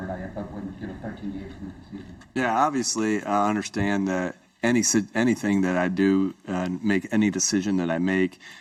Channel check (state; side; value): identical; both; correlation 1.00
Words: or not yet, but when, 13 games into the season? Yeah, obviously, I understand that anything that I do, make any decision that I make,